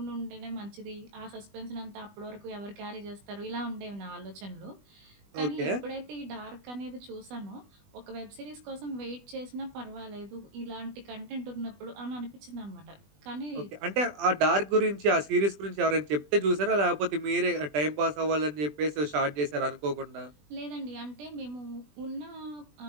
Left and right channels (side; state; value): left; late; 20 ms